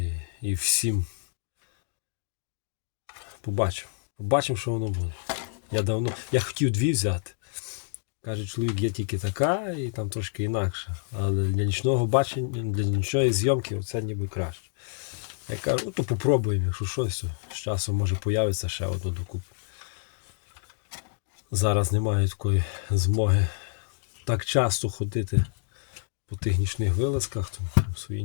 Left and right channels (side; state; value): right; silent; digital silence